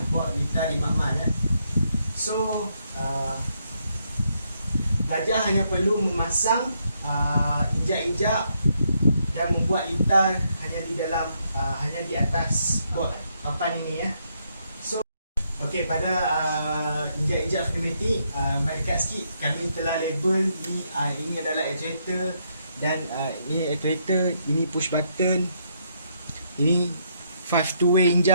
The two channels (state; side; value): inverted; both; correlation -0.75